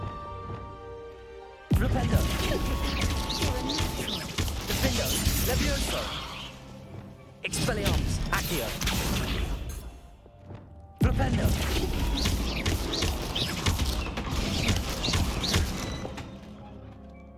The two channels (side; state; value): both; identical; correlation 1.00